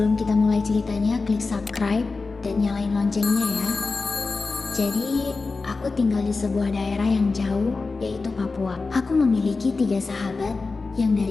kita mulai ceritanya, klik subscribe dan nyalain loncengnya ya. Jadi, aku tinggal di sebuah daerah yang jauh, yaitu Papua. Aku memiliki 3 sahabat yang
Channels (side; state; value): right; quieter; 4.0 dB